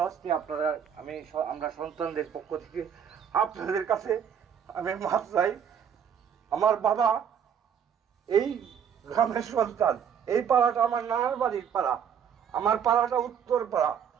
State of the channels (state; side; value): quieter; left; 8.0 dB